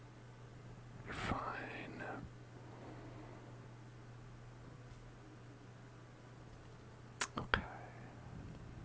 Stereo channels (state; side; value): identical; both; correlation 1.00